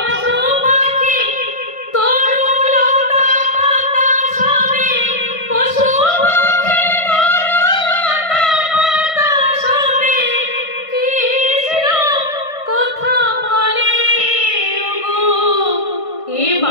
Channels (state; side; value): late; right; 1.5 ms